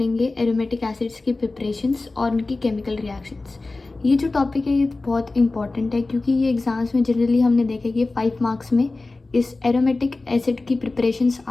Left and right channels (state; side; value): quieter; right; 3.3 dB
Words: एरोमेटिक एसिड्स की प्रिपरेशंस और उनकी केमिकल रिएक्शंस। ये जो टॉपिक है ये बहुत इंपॉर्टेंट है क्योंकि ये एग्ज़ाम्स में जनरली हमने देखा कि 5 मार्क्स में इस एरोमेटिक एसिड की प्रिपरेशंस